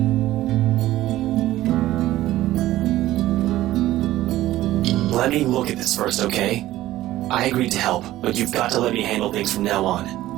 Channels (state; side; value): quieter; left; 15.2 dB